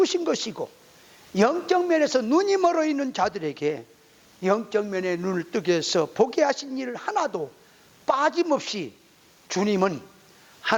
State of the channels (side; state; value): both; identical; correlation 1.00